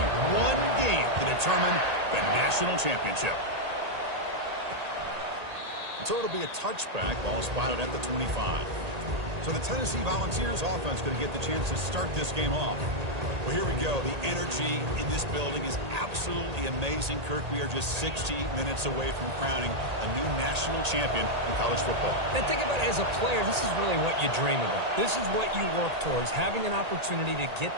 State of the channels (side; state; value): left; late; 1.8 ms